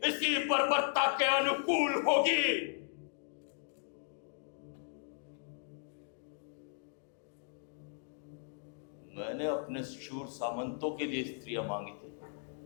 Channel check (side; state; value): right; silent; digital silence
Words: इसी बर्बरता के अनुकूल होगी। मैंने अपने शूर सामंतों के लिए स्त्रियां मांगी थी,